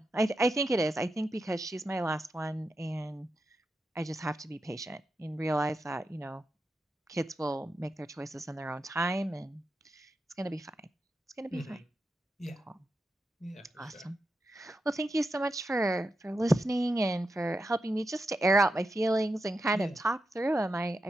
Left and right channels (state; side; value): normal; both; correlation 0.88